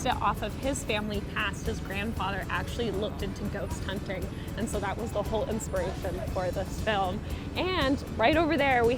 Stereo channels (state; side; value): identical; both; correlation 1.00